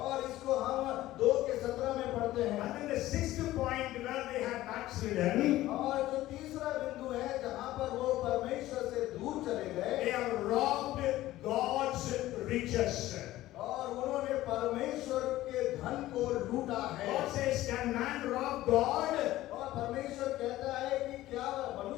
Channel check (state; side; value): quieter; right; 15.7 dB